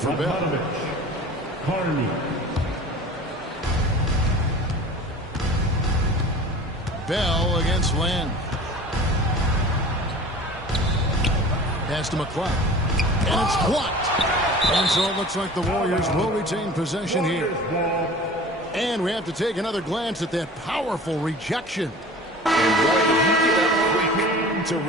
Bell. Bell against Land. Pass to McLeod. And it's blocked. And so it looks like the Warriors will retain possession here. And we have to take another glance at that powerful rejection. And boy, did he get up quick to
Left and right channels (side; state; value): both; normal; correlation 0.40